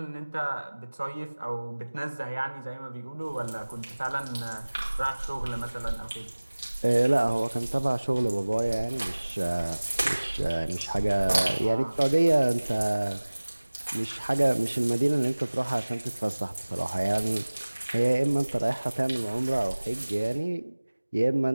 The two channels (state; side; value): inverted; both; correlation -1.00